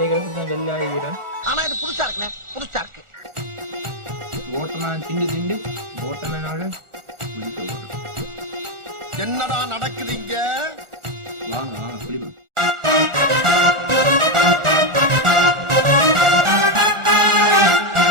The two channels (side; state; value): left; late; 1.4 ms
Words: தான் வெள்ளை ஆகிறேன். ஆனா இது புதுசா இருக்குண்ணே, புதுசா இருக்கு. ஓட்டமே திண்டு ஓட்டமேனால குளிக்க போறோம். என்னடா நடக்குது இங்க? வாங்க குளிப்போம்.